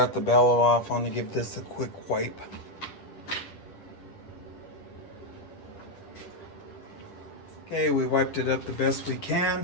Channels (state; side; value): late; right; 10 ms